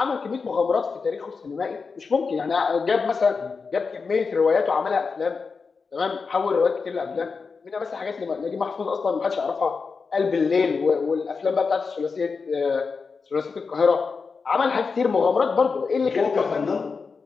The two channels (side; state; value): right; quieter; 4.9 dB